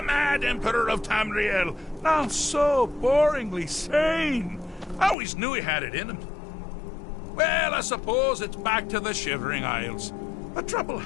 mad emperor of Tamriel, now so boringly sane? I always knew he had it in him. Well, I suppose it's back to the Shivering Isles. A trouble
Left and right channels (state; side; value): drops out; right; at 5.2 s